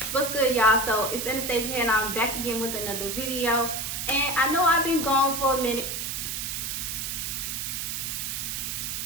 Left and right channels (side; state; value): right; noise; hiss, 3 dB below the sound